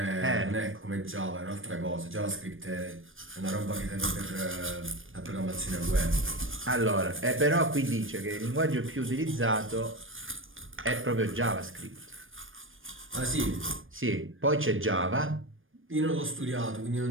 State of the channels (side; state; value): left; late; 0.59 ms